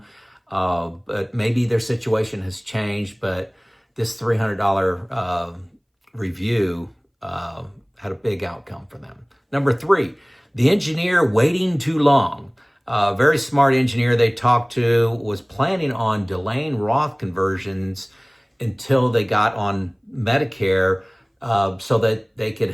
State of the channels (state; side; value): identical; both; correlation 1.00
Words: but maybe their situation has changed. But this $300 review had a big outcome for them. Number three, the engineer waiting too long. A very smart engineer they talked to was planning on delaying Roth conversions until they got on Medicare so that they could